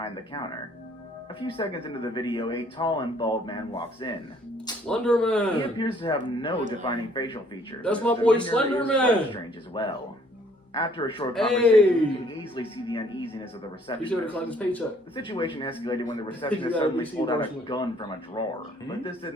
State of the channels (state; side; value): normal; both; correlation 0.61